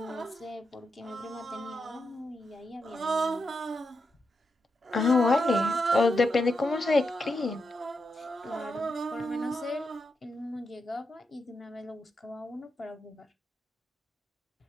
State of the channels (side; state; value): both; normal; correlation 0.85